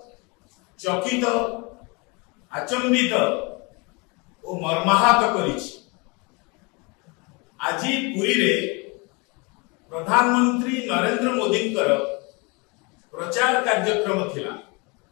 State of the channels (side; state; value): right; quieter; 29.0 dB